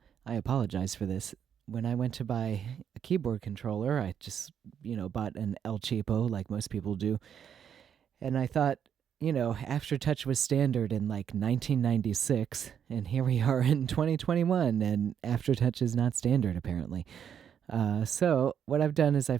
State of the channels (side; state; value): left; quieter; 8.5 dB